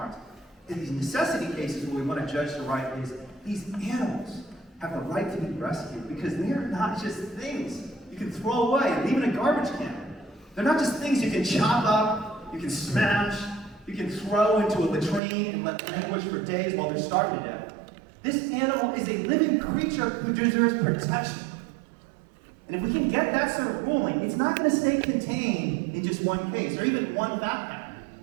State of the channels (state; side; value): drops out; left; at 15.2 s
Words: In these necessity cases where we want to judge the right is these animals have a right to be rescued because they are not just things you can throw away and leave in a garbage can. They're not just things you can chop up, you can smash, you can throw into a latrine and let them languish for days while they're starving to death. This animal is a living creature who deserves protection. And if we can get that sort of ruling, it's not going to stay contained in just one case or even one fact